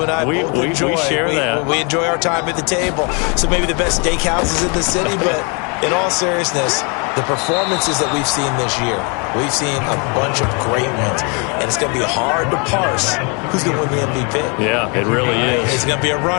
and I both enjoy. We share that. We enjoy our time at the table. So maybe the best steakhouses in the city, but in all seriousness, the performances that we've seen this year, we've seen a bunch of great ones. And it's going to be hard to parse who's going to win the MVP. Yeah, it really is. Is it going to be a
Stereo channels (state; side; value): quieter; right; 33.9 dB